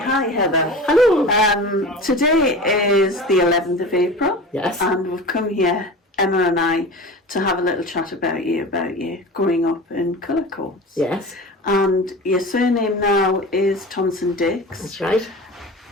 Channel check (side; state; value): both; normal; correlation 0.34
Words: Heather. Hello. Today is the 11th of April. Yes. And we've come here, Emma and I, to have a little chat about you growing up in Cullercoats. Yes, And your surname now is Thompson-Dix. that's right.